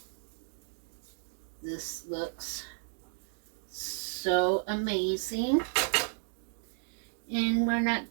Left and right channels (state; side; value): silent; left; digital silence